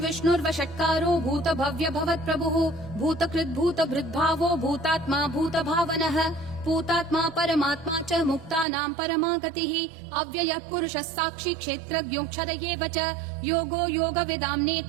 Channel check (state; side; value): drops out; left; at 8.7 s